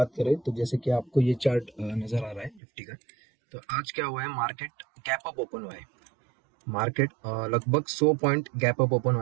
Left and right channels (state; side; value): drops out; left; at 2.6 s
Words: करें तो जैसे कि आपको ये चार्ट नजर आ रहा है निफ्टी का। तो आज क्या हुआ है, मार्केट गैप अप ओपन हुआ है। मार्केट लगभग 100 पॉइंट गैप अप ओपन